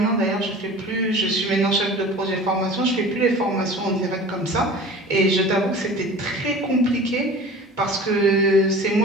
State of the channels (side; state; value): both; normal; correlation 0.40